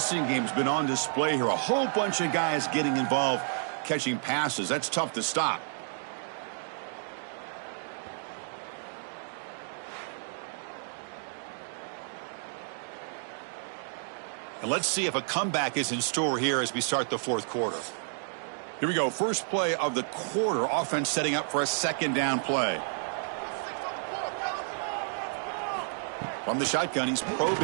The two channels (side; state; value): left; silent; digital silence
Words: game has been on display here. A whole bunch of guys getting involved, catching passes. That's tough to stop. And let's see if a comeback is in store here as we start the fourth quarter. Here we go. First play of the quarter. Offense setting up for a second down play. From the shotgun, he's